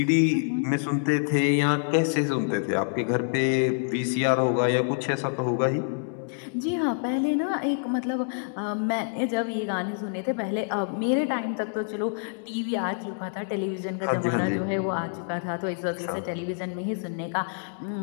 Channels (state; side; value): silent; right; digital silence